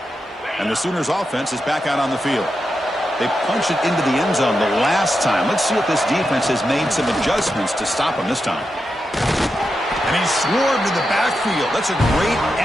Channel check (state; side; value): normal; both; correlation 0.88